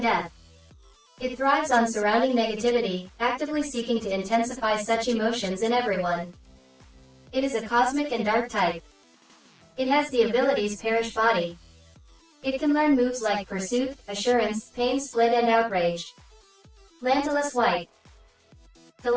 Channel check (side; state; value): both; identical; correlation 1.00